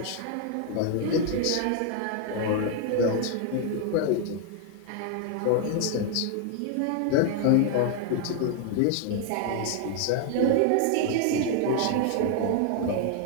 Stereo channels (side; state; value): both; different; correlation 0.00